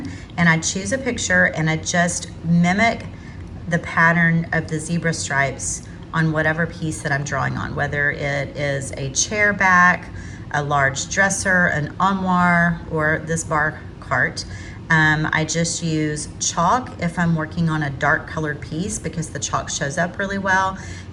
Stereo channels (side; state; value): both; identical; correlation 1.00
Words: and I choose a picture and I just mimic the pattern of the zebra stripes on whatever piece that I'm drawing on, whether it is a chair back, a large dresser, an armoire, or this bar cart. I just use chalk if I'm working on a dark colored piece because the chalk shows up really well.